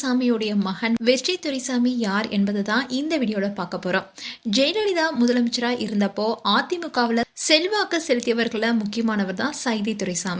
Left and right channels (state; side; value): identical; both; correlation 1.00